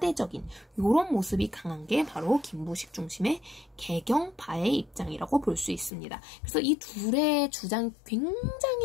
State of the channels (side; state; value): right; drops out; at 5.9 s